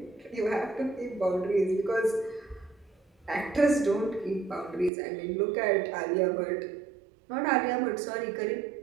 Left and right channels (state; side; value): drops out; left; at 4.9 s